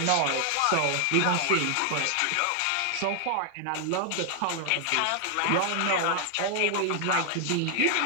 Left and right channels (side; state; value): both; different; correlation 0.00